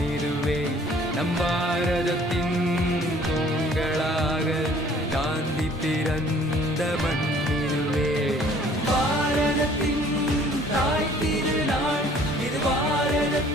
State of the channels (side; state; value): both; normal; correlation 0.55